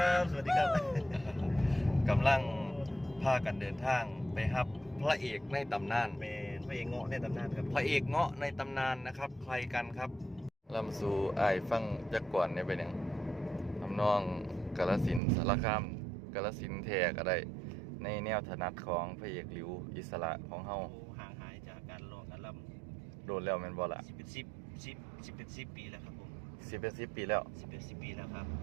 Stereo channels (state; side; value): drops out; left; at 15.2 s